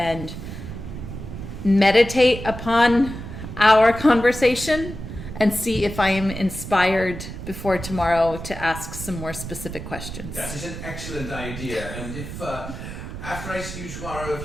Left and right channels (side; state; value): right; noise; rumble, 9 dB below the sound